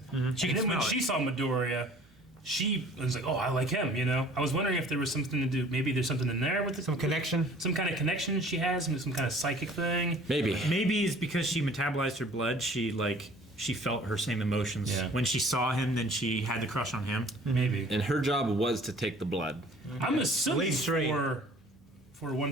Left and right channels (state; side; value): normal; both; correlation 0.51